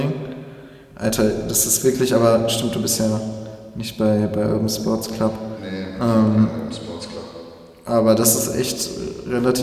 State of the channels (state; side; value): identical; both; correlation 1.00